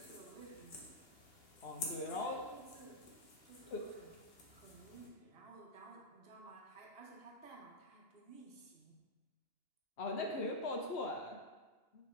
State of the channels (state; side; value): late; right; 2.8 ms